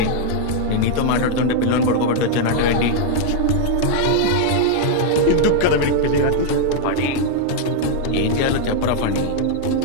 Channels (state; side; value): different; both; correlation 0.00